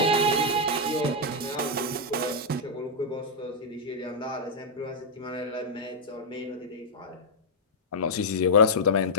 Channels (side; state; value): both; normal; correlation -0.06